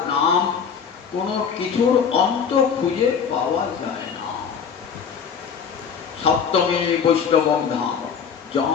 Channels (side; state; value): right; quieter; 6.7 dB